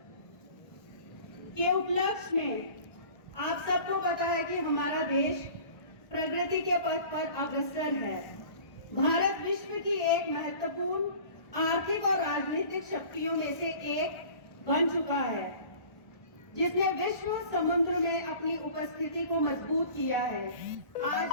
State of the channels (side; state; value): right; late; 1.2 ms